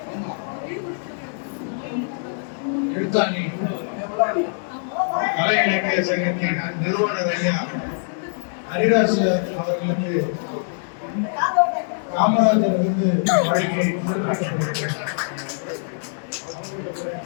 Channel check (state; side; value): silent; right; digital silence